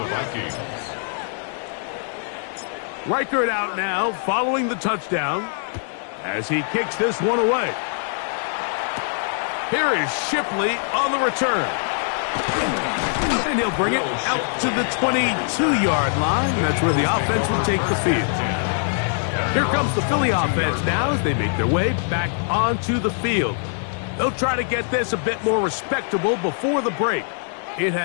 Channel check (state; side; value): silent; right; digital silence